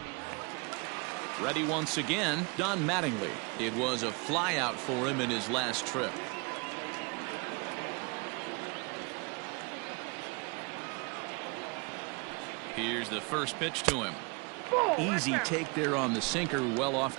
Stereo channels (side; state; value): left; quieter; 31.1 dB